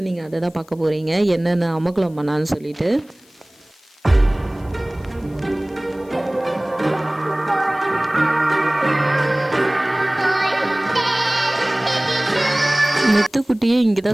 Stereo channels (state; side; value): noise; left; hiss, 30 dB below the sound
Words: நீங்கள் அதை தான் பார்க்க போகிறீங்க, என்னென்ன அமக்கலம் பண்ணான்னு சொல்லிட்டு. மெத்துக்குட்டியே இங்கே